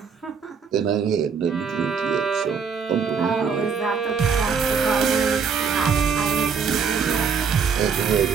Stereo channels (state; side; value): quieter; left; 6.1 dB